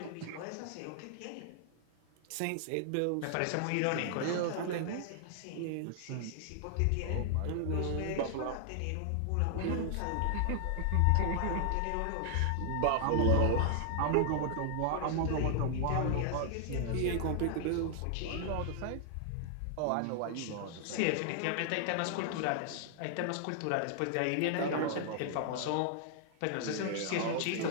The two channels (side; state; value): both; different; correlation -0.01